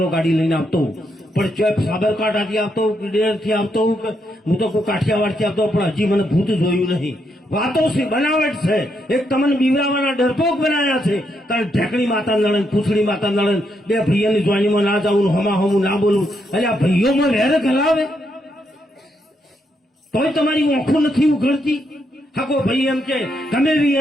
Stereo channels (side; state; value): both; normal; correlation 0.78